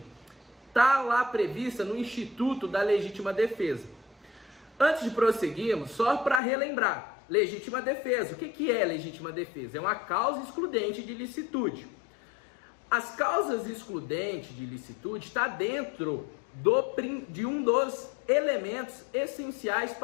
está lá prevista no Instituto da Legítima Defesa. Antes de prosseguirmos, só para relembrar, legítima defesa. O que é legítima defesa? É uma causa excludente de licitude. As causas excludentes de licitude está dentro de um dos elementos essenciais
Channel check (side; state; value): right; drops out; at 6.4 s